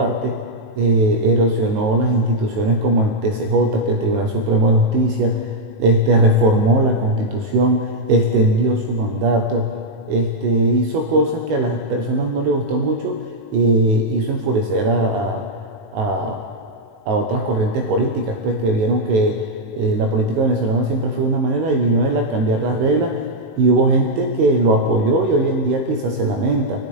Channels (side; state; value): left; late; 19 ms